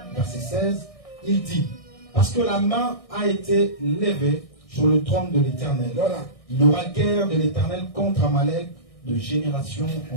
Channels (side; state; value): right; late; 1.6 ms